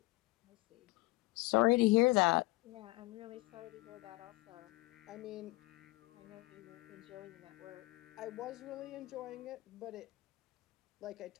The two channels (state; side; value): quieter; right; 21.6 dB